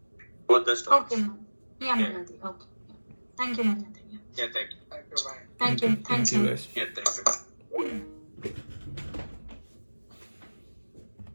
both the stories. Okay, ma'am. Yeah, Malati. Okay. Yeah. Thank you, Malati. Yeah. Yeah, thank you. Thank you. Bye. Thank you. Thank Thanks, you, sir. guys. Yeah,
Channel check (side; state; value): both; inverted; correlation -1.00